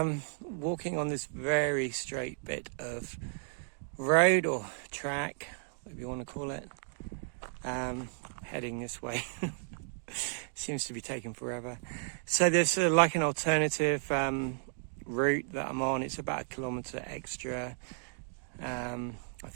walking on this very straight bit of road or track, whatever you want to call it, heading this way. Seems to be taking forever. So there's like an alternative route that I'm on. It's about 1 kilometre extra, I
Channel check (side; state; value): left; silent; digital silence